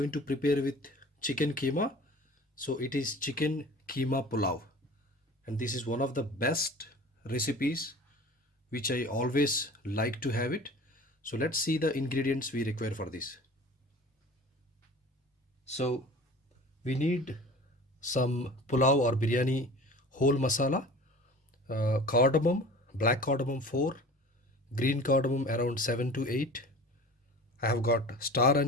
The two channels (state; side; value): normal; both; correlation 0.41